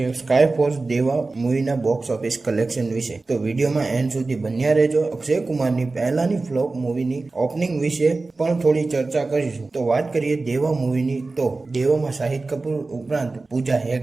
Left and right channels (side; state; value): left; quieter; 3.5 dB